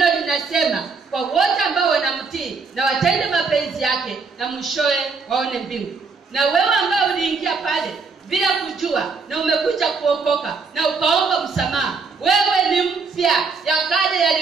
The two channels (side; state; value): left; quieter; 4.8 dB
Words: linasema kwa wote ambao wanamtii na watende mapenzi yake, na mwishowe waone mbingu. Na wewe ambao uliingia pale bila kujua na umekuja kuokoka na ukaomba msamaha, wewe ni mpya, ya kale